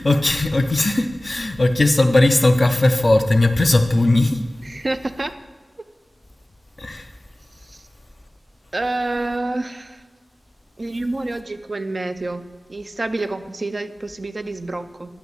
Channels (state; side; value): normal; both; correlation 0.97